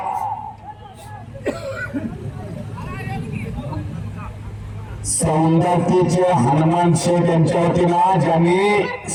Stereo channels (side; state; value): both; identical; correlation 1.00